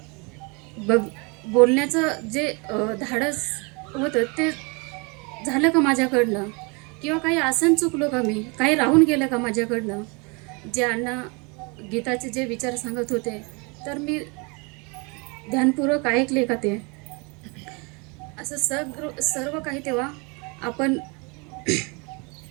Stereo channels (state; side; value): quieter; left; 30.6 dB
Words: बोलण्याचं जे धाडस होतं ते झालं का माझ्याकडनं, किंवा काही आसन चुकलो का, मी काही राहून गेलं का माझ्याकडनं. जे अण्णा गीताचे जे विचार सांगत होते तर मी ध्यानपूर्वक ऐकले का ते, असं सर्व काही तेव्हा आपण